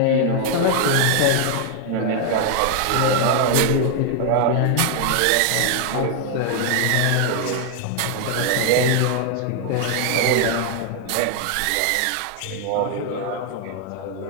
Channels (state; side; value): different; both; correlation 0.00